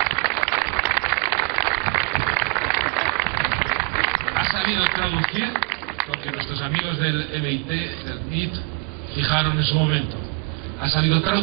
Ha sabido traducir lo que nuestros amigos del MIT, del MIT, fijaron en su momento. Ha sabido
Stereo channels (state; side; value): quieter; left; 30.8 dB